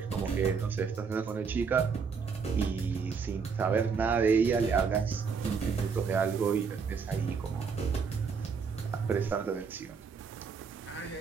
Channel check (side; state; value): left; quieter; 5.6 dB